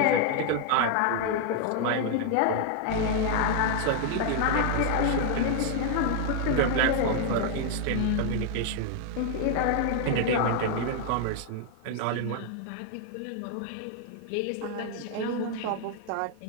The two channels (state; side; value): different; both; correlation 0.00